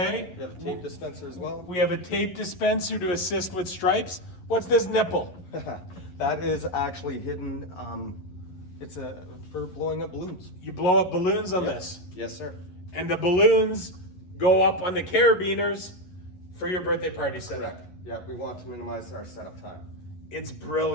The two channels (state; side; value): late; right; 11 ms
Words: we have a tape dispenser as well. We have a tape dispenser to assist with stripes. What's this nipple? That is actually hidden. It's for blowing up balloons. You blow up balloons on this. Yes, sir. And the balloons go up on the carabiners for your birthday party setup. Correct. Yeah, we want to minimize our setup time. It's